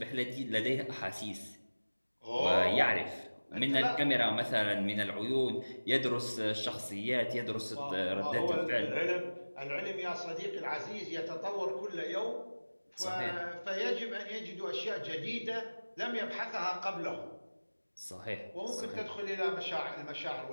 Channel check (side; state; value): both; inverted; correlation -1.00